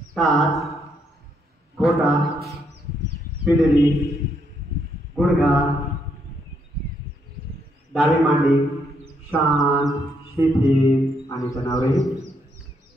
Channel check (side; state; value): both; normal; correlation 0.75